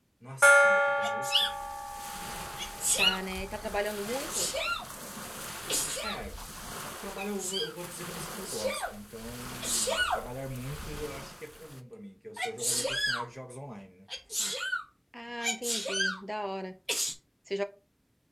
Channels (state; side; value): identical; both; correlation 1.00